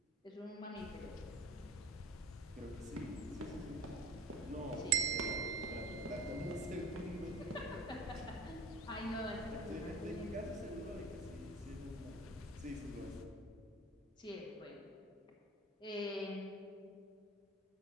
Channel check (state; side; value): normal; both; correlation 0.38